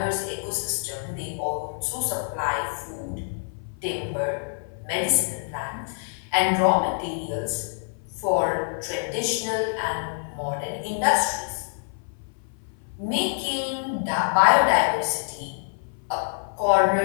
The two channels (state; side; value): silent; right; 57 dB below the other